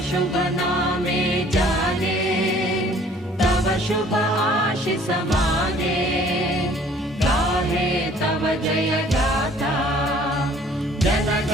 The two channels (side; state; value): both; normal; correlation 0.55